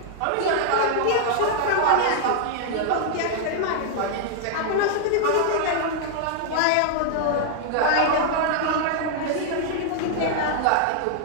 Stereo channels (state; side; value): different; both; correlation -0.01